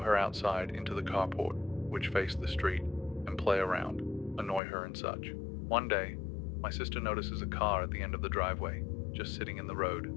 outside into the carport, which faced the street, and play around, annoy her and such. One day, my sister notices a car at the end of the driveway, just sitting in the road.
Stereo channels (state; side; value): drops out; right; at 4.6 s